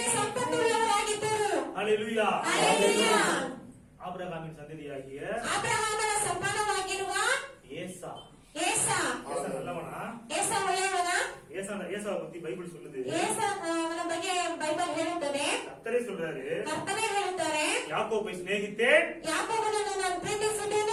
ಸಂಪನ್ನುಳ್ಳವರಾಗಿದ್ದರು. ஹalleluya. ஹalleluya. ஆபிரகாமின் சந்ததியாகிய ಆಬ್ರಹಾಮನ ಸಂತಾನವಾಗಿರುವ ஏசா. ಏಸಾ ஏசா நல்லவனா? ಏಸಾ ಒಳ್ಳೆಯವನ? ஏசாவை பத்தி பைபிள் சொல்லுது. ಏಸನ ಬಗ್ಗೆ ಬೈಬಲ್ ಹೇಳುತ್ತದೆ. கர்த்தரே சொல்றாரு, ಕರ್ತನೇ ಹೇಳುತ್ತಾರೆ, யாக்கோபை சிநேகித்தேன், ಯಾಕೋಬನನ್ನು ನಾನು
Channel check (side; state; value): both; identical; correlation 1.00